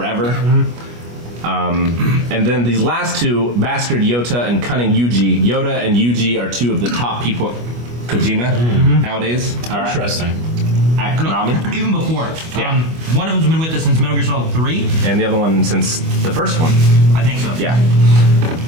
And then these last two, Bastard Yota and Cunning Yuji. Yota and Yuji are two of the top people at Kojima nowadays. Interesting. At Konami. Even before. Yeah. One of them's been with us since Metal Gear Solid 3. And the other one since the first one. I think so. Yeah.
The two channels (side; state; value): left; late; 25 ms